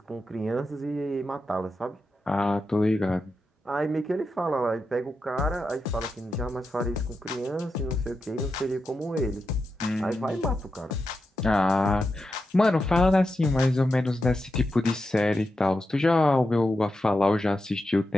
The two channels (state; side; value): normal; both; correlation 0.88